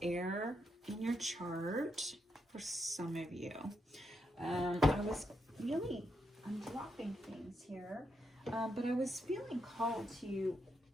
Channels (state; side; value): normal; both; correlation 0.82